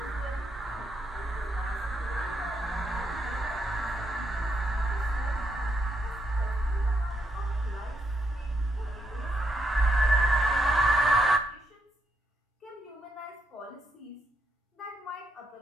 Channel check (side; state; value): both; normal; correlation 0.79